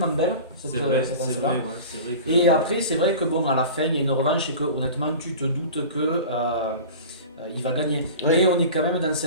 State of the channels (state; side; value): inverted; both; correlation -0.36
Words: belle, cette C'est vrai, séquence-là. c'est vrai que... Et après c'est vrai que bon, à la fin il y a une revanche, et que honnêtement tu te doutes que il va gagner. Ouais. Mais on est quand même dans